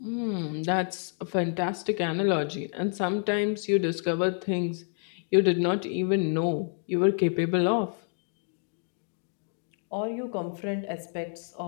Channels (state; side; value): silent; right; 59 dB below the other